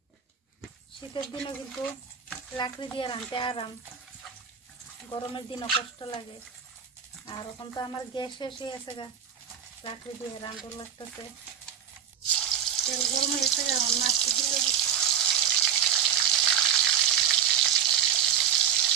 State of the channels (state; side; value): quieter; left; 8.6 dB